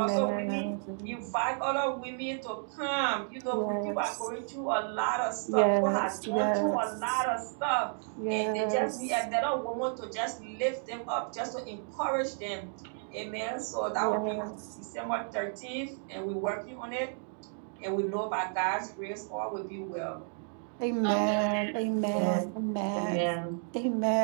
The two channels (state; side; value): silent; left; 56 dB below the other